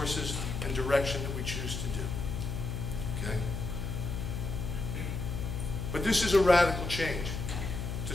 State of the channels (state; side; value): noise; left; hum, 4 dB below the sound